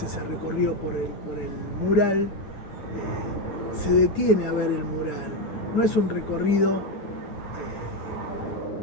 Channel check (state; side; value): late; right; 9.6 ms